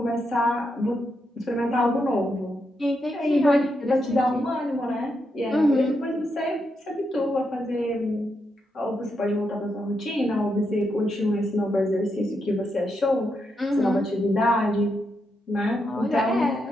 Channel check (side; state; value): both; normal; correlation 0.83